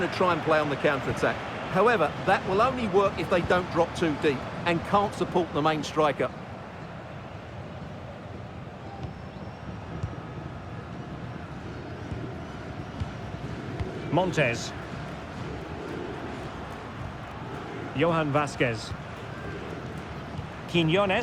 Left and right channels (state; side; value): identical; both; correlation 1.00